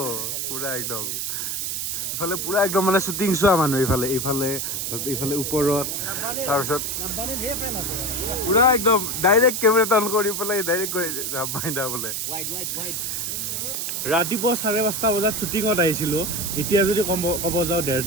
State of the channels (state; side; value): noise; right; hiss, 2 dB below the sound